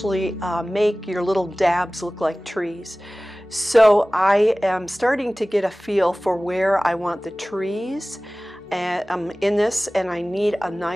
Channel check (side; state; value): both; normal; correlation 0.98